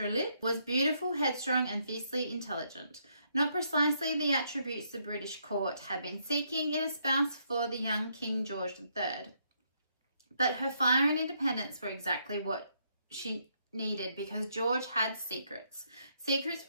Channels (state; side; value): inverted; both; correlation -0.74